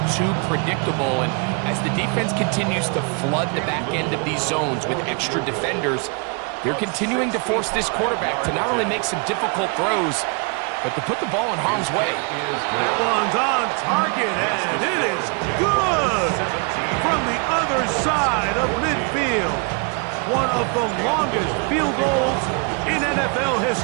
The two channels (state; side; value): quieter; left; 35.5 dB